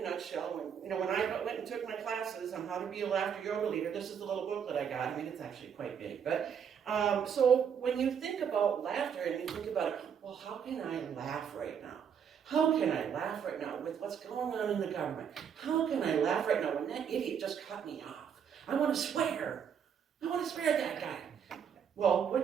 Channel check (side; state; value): left; quieter; 7.7 dB